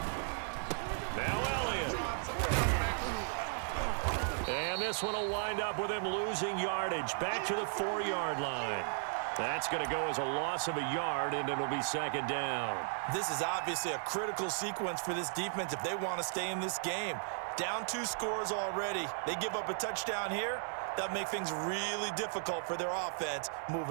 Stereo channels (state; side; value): silent; left; 54 dB below the other